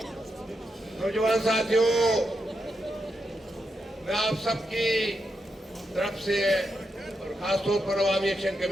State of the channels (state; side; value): normal; both; correlation 0.84